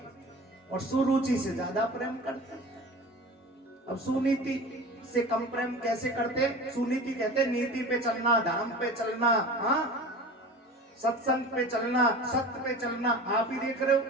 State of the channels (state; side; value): normal; both; correlation 0.36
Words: और सुरुचि से ज्यादा प्रेम करता है। अब सुनीति से कम प्रेम कैसे करते? सुनीति कहते नीति पे चलना, धर्म पे चलना, हाँ, सत्संग पे चलना, सत्य पे चलना। आप ही देख रहे हो